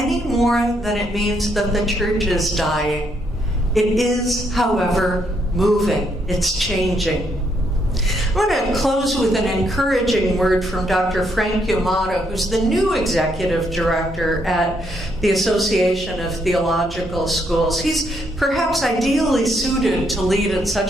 more than it means that the church is dying. It is, however, moving. It's changing. I want to close with an encouraging word from Dr. Frank Yamato, who's the new executive director at the Association of Theological Schools. He's perhaps ideally suited to lead at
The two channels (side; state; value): both; normal; correlation 0.74